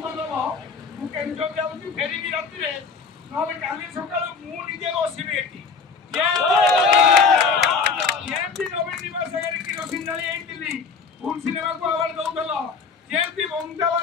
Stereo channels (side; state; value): right; quieter; 5.2 dB